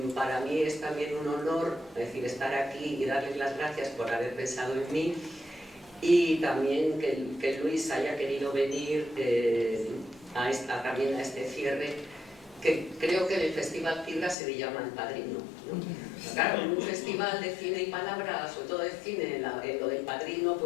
para mí es también un honor, es decir, estar aquí y darles las gracias por haber pensado en mí, y también que Luis haya querido venir también a este cierre, que creo que en el Festival Cibra se le llama El Padrino, ¿no? Claro, en un festival de cine y palabra, sobre todo de cine, lo del Padrino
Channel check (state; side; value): drops out; right; at 14.4 s